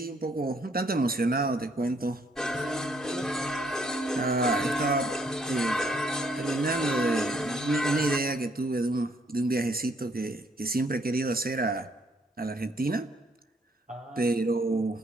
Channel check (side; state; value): both; normal; correlation 0.68